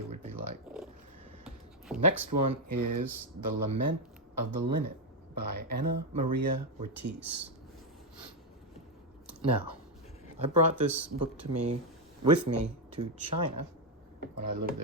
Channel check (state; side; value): normal; both; correlation 0.03